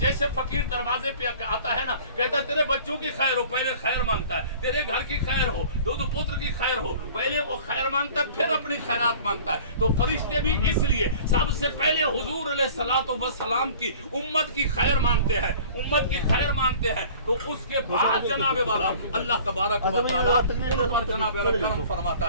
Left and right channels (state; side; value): inverted; both; correlation -0.47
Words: फकीर दरवाजे पे आता है ना, कहता है तेरे बच्चों की खैर हो, पहले खैर मांगता है, तेरे घर की खैर हो, दो पुत्र की खैर हो, पहले वो खैर मांगता है, फिर अपनी खैरात मांगता है। तो फरिश्ते भी इसलिए सबसे पहले हुजूर अलैहिस्सलातु वस्सलाम की उम्मत की खैर मांगते हैं, उम्मत की खैर मांगते हैं। तो उसके बाद जनाबे वाला अल्लाह तबारक व तआला उन पर जनाबे वाला करम फरमाता